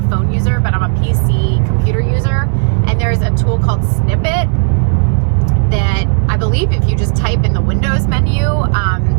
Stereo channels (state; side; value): silent; left; 68 dB below the other